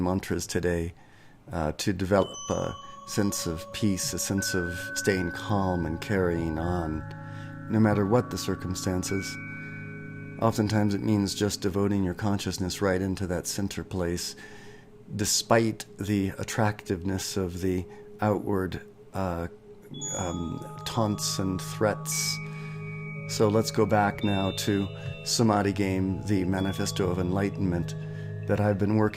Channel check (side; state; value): both; identical; correlation 1.00